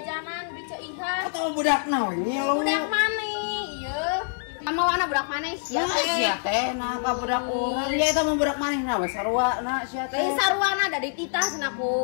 di ceu iha. Atawa budak naon ngilu? Budak maneh ieu. Ama wana budak maneh sia teh. Sia teh nah ka budak urang nya eta mah budak manehna we sarwana sia teh. Teh sarwana da dititah cenah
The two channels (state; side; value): silent; right; digital silence